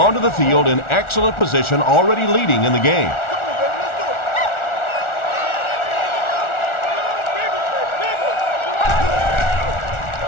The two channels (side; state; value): right; late; 1.4 ms